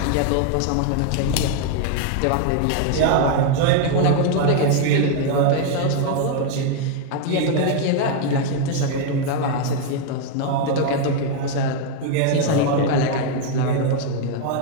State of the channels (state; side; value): different; both; correlation 0.01